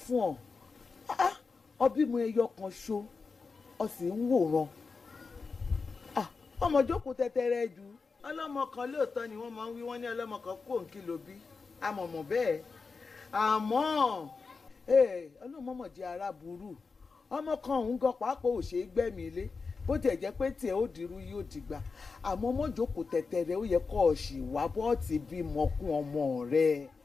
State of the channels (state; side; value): quieter; right; 4.6 dB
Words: fún ọ ọbí mu ẹyọ kan ṣo ọ sì ń wòran ọmọ jókòó tẹtẹrẹ jù ọlọ́mọ kan lóòótọ́ ni wọ́n máa ń wí wọ́n ní ọlọ́mọ kan kó òǹkì ló bí àmọ̀mọ̀ bẹ́ẹ̀ àmọ́ ọlọ́mọmọ̀ jẹ́ ara burú ọmọ kan òun gan pàápàá ò ṣe é gbẹ̀mí ilé bó tiẹ̀ jẹ́ pé tiẹ̀ ó dirú yóò dìgbà àmọ́ mọ́jòkó tẹ̀tẹ̀rẹ̀ ó yẹ kọ́ ọ sì wá bọ́ọ̀tì bímọ kún ọmọ rẹ̀